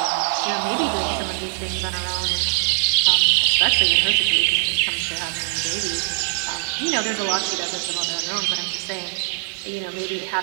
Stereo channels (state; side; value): silent; left; digital silence